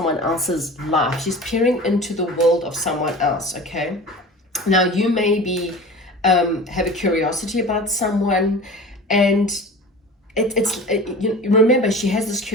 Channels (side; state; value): both; normal; correlation 0.37